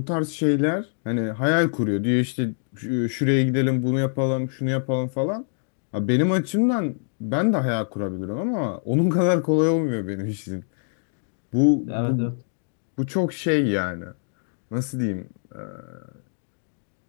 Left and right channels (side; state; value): right; silent; digital silence